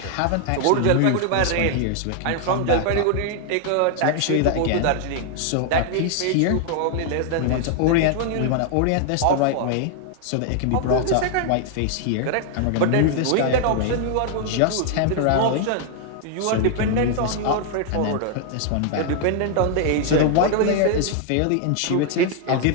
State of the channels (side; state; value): both; different; correlation 0.00